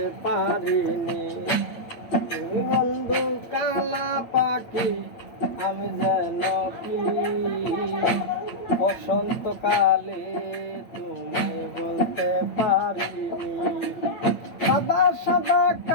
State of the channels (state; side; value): late; right; 8.8 ms